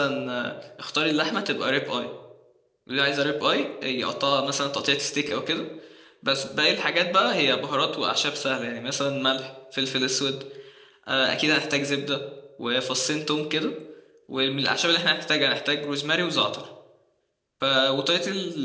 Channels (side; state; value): both; identical; correlation 1.00